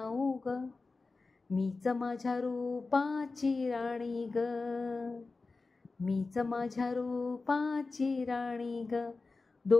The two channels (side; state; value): right; quieter; 3.9 dB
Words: ग, मीच माझ्या रूपाची राणी ग, मीच माझ्या रूपाची राणी ग.